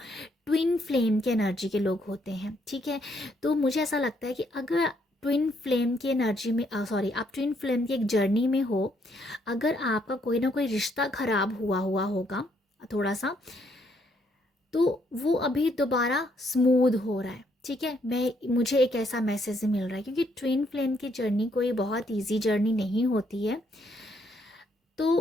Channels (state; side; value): normal; both; correlation 0.72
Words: ट्विन फ्लेम के एनर्जी के लोग होते हैं, ठीक है। तो मुझे ऐसा लगता है कि अगर ट्विन फ्लेम की एनर्जी में सॉरी आप ट्विन फ्लेम की एक जर्नी में हो, अगर आपका कोई ना कोई रिश्ता खराब हुआ हुआ होगा थोड़ा सा, तो वो अभी दोबारा स्मूथ हो रहा है, ठीक है। मुझे एक ऐसा मैसेज मिल रहा है क्योंकि ट्विन फ्लेम की जर्नी कोई बहुत इजी जर्नी नहीं होती है।